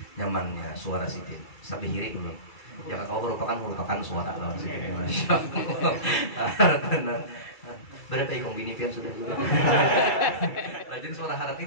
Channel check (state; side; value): late; right; 2.3 ms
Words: nyamannya suara Sidin sampai hiri dulu. Jangan kau merupakan suara lawan Sidin. Masya Allah. Berapa ikong bini pian sudah juga. Rajin suara haratnya